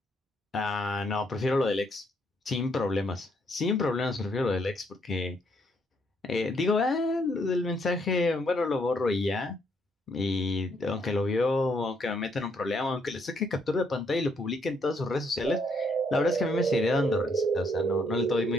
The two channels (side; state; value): both; normal; correlation 0.72